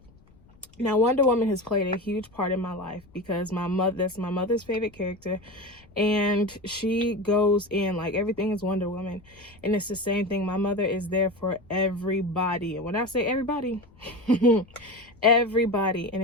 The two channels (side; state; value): left; noise; rumble, 27 dB below the sound